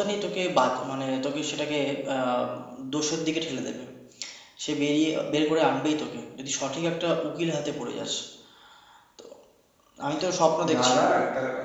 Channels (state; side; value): identical; both; correlation 1.00